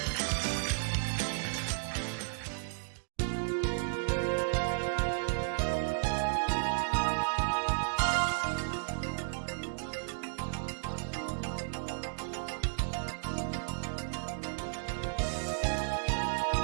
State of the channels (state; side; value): silent; left; digital silence